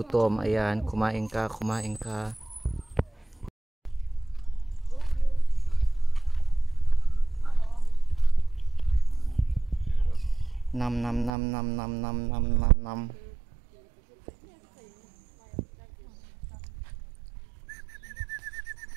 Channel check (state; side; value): drops out; left; at 11.3 s